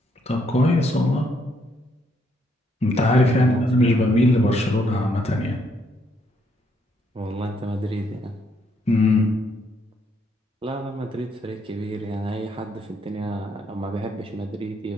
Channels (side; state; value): both; normal; correlation 0.73